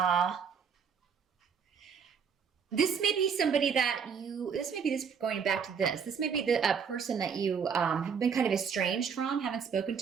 somebody going back to this. This may be a person that you have been kind of estranged from, haven't spoken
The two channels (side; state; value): left; quieter; 6.6 dB